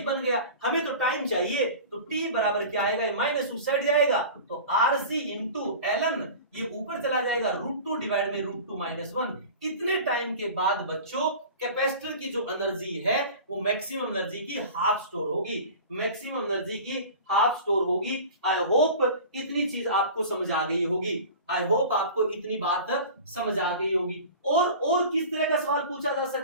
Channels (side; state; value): both; inverted; correlation -0.37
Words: बन गया। हमें तो टाइम चाहिए, तो टी बराबर क्या आएगा, माइनस उस साइड जाएगा, तो आरसी इंटू एलन, ये ऊपर चला जाएगा, √2 डिवाइड में √2 - 1। इतने टाइम के बाद बच्चों कैपेसिटर की जो एनर्जी है वो मैक्सिमम एनर्जी की हाफ स्टोर होगी, मैक्सिमम एनर्जी की हाफ स्टोर होगी। आई होप इतनी चीज आपको समझ आ गई होगी, आई होप आपको इतनी बात समझ आ गई होगी। और किस तरह का सवाल पूछा जा